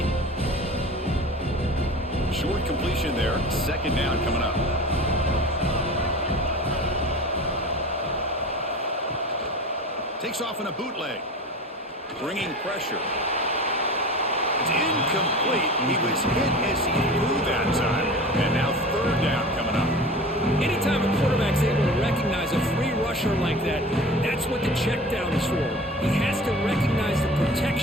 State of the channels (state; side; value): normal; both; correlation 0.37